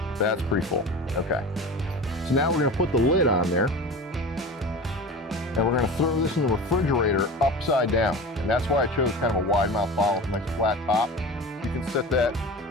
That's pretty full. Okay. So now we're going to put the lid on there, and we're going to throw this in the refrigerator upside down. And that's why I chose kind of a wide mouth bottle with a nice flat top. You can set that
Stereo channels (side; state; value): both; normal; correlation 0.33